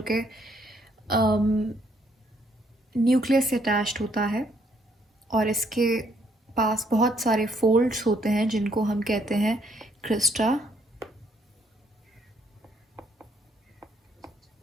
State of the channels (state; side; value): normal; both; correlation 0.70